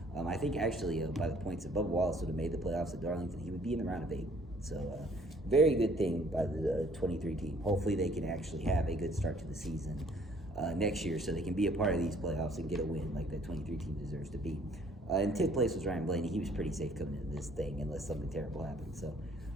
I think actually by the points that Bubba Wallace would have made the playoffs at Darlington, he would be in the round of 8. So very good thing by the 23 team. Hopefully they can actually have a good start to the season next year, so they can be a part of these playoffs and get a win like that 23 team deserves to be. In 10th place was Ryan Blaney. He was pretty safe coming into this thing unless something terrible happened. So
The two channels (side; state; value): both; normal; correlation 0.59